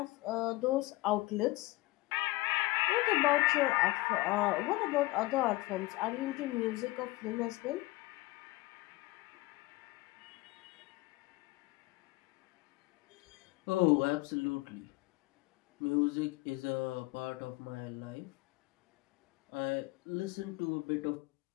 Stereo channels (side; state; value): right; quieter; 20.4 dB